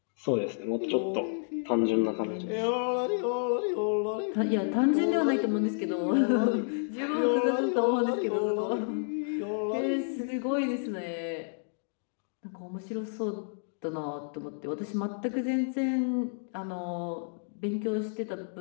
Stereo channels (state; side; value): silent; right; digital silence